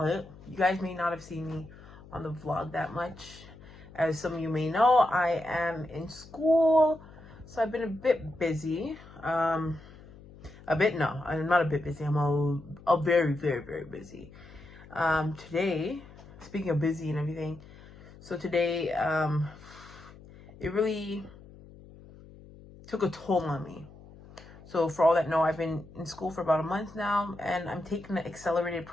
have seen me on the vlog that much. As some of you may know, I am in school, so I've been a bit busy. I'm not a bit busy. I'm a very, very, very busy. Today, speaking of busy and everything, so today, it really took a toll on me. So for all that know, I've been in school for about a month now, and I'm taking the accelerated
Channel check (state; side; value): noise; left; hum, 20 dB below the sound